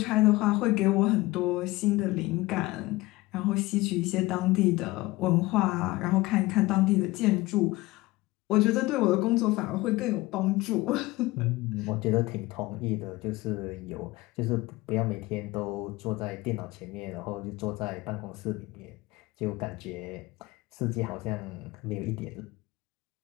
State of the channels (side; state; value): right; quieter; 20.2 dB